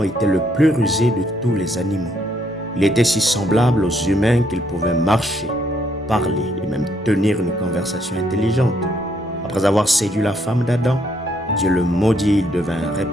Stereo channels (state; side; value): normal; both; correlation 0.71